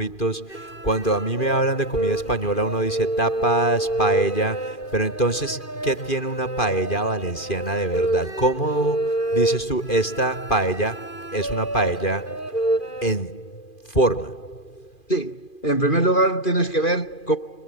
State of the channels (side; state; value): right; late; 2.4 ms